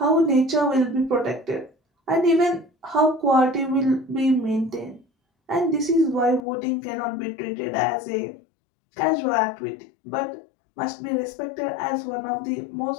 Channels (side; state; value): right; drops out; at 6.4 s